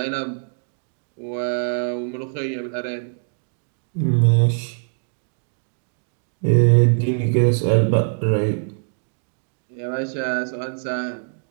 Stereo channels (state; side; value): silent; left; digital silence